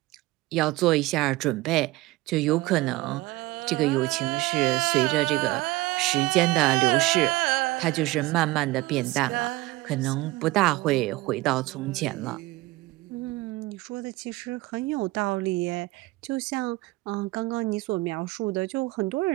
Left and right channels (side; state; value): left; quieter; 20.0 dB